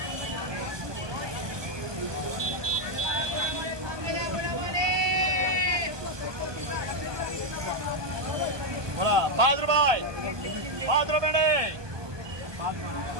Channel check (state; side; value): late; left; 1.2 ms